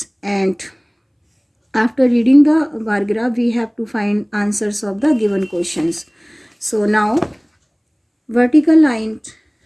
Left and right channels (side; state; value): both; identical; correlation 1.00